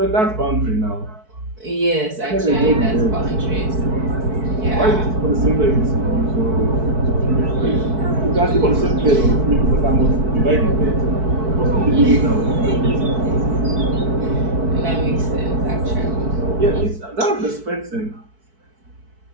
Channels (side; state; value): left; late; 4.6 ms